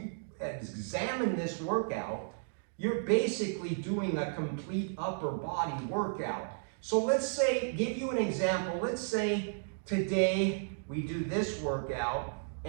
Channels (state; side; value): silent; left; digital silence